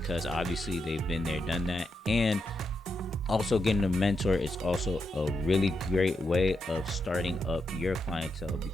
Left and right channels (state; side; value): normal; both; correlation 0.84